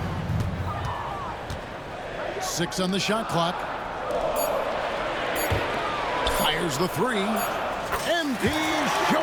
6 on the shot clock. Fires the three. MP is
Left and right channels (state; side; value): identical; both; correlation 1.00